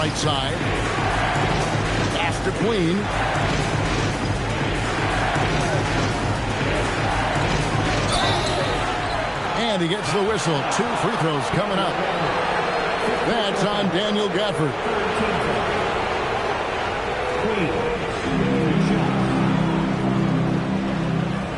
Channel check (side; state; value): both; identical; correlation 1.00